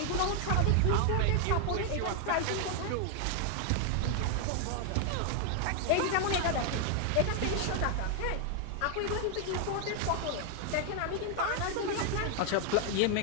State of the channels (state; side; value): different; both; correlation 0.00